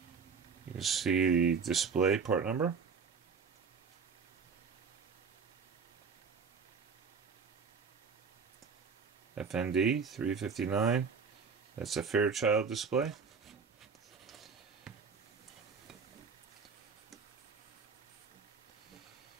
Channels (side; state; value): left; quieter; 5.5 dB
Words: You can see the display part number. FND 359. That's a Fairchild display.